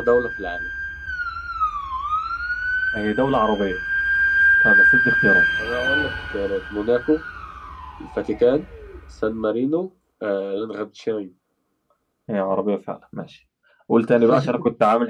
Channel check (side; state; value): both; identical; correlation 1.00